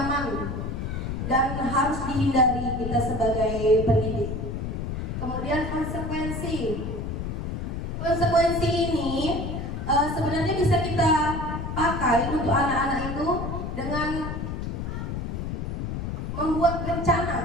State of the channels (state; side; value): noise; left; rumble, 4 dB below the sound